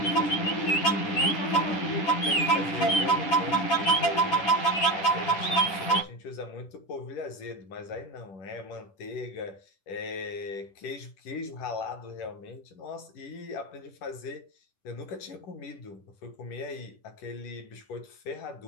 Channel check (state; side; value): late; right; 10 ms